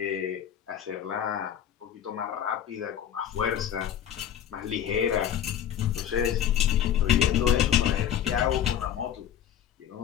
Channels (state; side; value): quieter; right; 10.0 dB